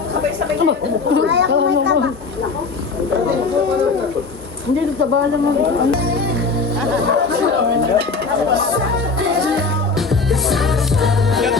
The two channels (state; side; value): quieter; right; 4.3 dB